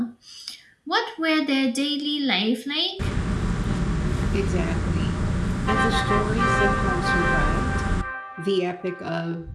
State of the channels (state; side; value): identical; both; correlation 1.00